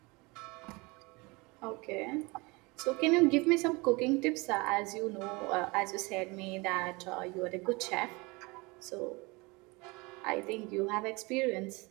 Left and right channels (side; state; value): left; quieter; 25.7 dB